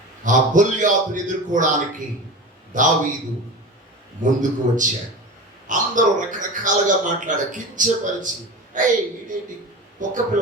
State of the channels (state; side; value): normal; both; correlation 0.30